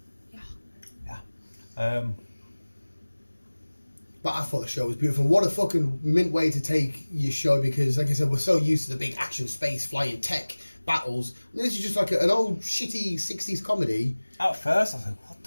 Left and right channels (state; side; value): inverted; both; correlation -1.00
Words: awesome. Yeah. But I thought the show was beautiful. What a fucking mint way to take your show, because, like I said, we're so used to the big action, space, flying, tech battles. And this is just like an old, shitty 60s comedy. At first, I was like, what the